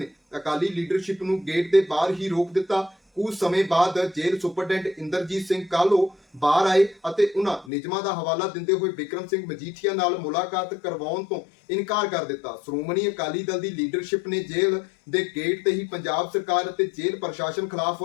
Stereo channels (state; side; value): drops out; right; at 7.7 s